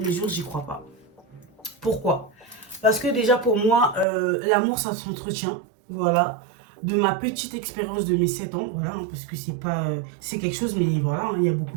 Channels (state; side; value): drops out; left; at 4.0 s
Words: jour, j'y crois pas. Pourquoi? Parce que déjà, pour moi, l'amour, ça s'entretient, voilà. De ma petite expérience de mes 7 ans, voilà, hein, parce que c'est pas, c'est quelque chose, mais voilà, hein, il y a beaucoup